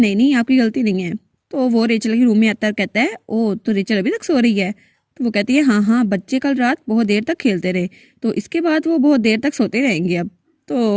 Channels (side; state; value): both; identical; correlation 1.00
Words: नहीं आपकी गलती नहीं है। तो वो रेचल के रूम में आता है और कहता है ओ तो रेचल अभी तक सो रही है। तो वो कहती है हाँ हाँ, बच्चे कल रात बहुत देर तक खेलते रहे तो इसके बाद वो बहुत देर तक सोते रहेंगे अब। तो